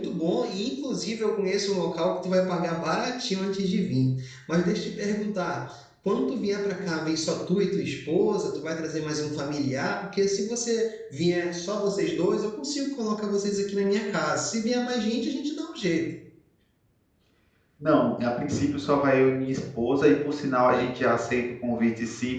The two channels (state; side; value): identical; both; correlation 1.00